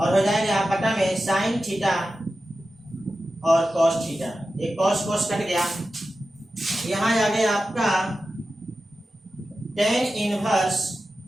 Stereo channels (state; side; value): normal; both; correlation 0.92